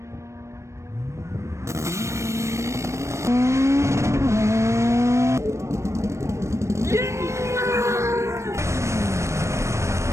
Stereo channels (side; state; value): left; late; 0.14 ms